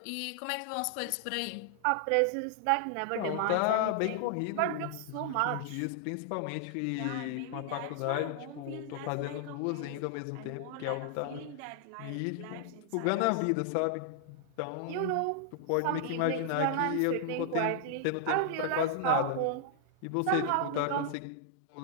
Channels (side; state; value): both; different; correlation 0.00